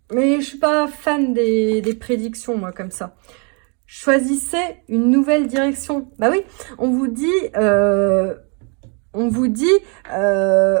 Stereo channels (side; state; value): left; quieter; 36.0 dB